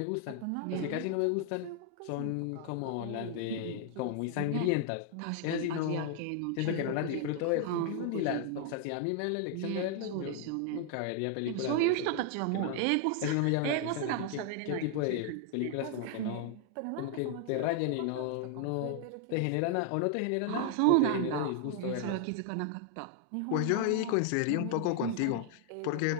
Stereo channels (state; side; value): different; both; correlation 0.00